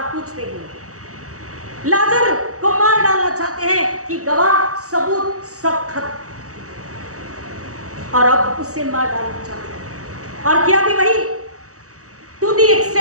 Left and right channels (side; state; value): left; late; 0.65 ms